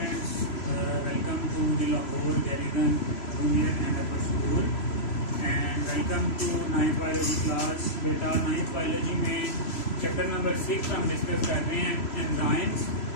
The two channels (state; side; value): late; right; 3.0 ms